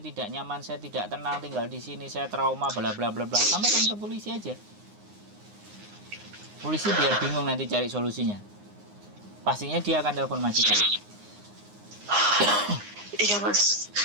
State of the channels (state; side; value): late; left; 9.7 ms